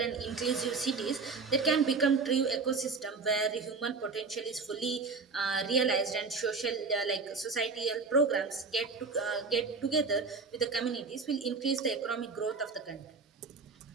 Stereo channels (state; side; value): quieter; left; 4.5 dB